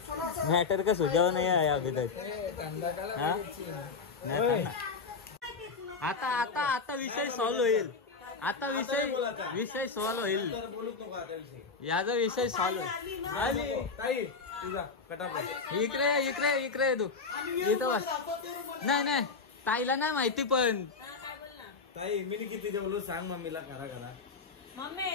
मॅटर का सुझाव नाही आहे अभी तक हाँ? नाही आता आता आता विषय सॉल्व होईल आता विषय सॉल्व होईल बोलूच नको आता विषय याचा विषय सॉल्व होईल ताई तुझा कटाप इकडे तू इथं बस नाही ताईला नाही माहिती पण ताई मी किती जेवलो सांग मम्मीला करा मम्मी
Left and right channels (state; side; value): quieter; right; 4.7 dB